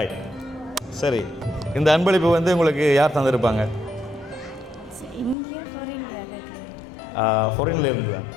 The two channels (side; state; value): right; drops out; at 5.4 s